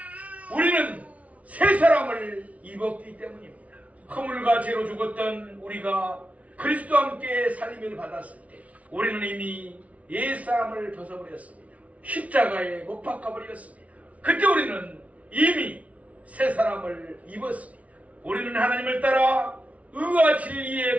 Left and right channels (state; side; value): late; left; 0.067 ms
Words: 우리는 새 사람을 입었기 때문입니다. 허물과 죄로 죽었던 우리가 그리스도와 함께 살림을 받았을 때 우리는 이미 옛사람을 벗어버렸습니다. 십자가에 못 박아버렸습니다. 그때 우리는 이미 새 사람을 입었습니다. 우리는 하나님을 따라 의와